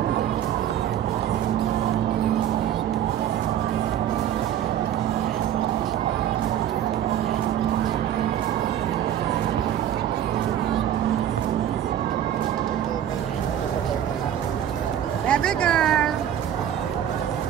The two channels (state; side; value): quieter; left; 10.6 dB